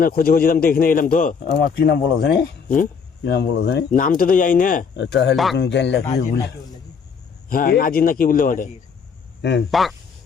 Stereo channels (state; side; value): quieter; right; 6.1 dB